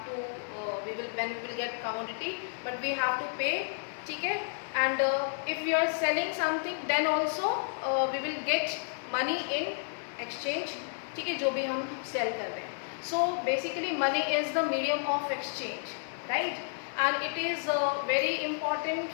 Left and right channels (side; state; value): right; silent; digital silence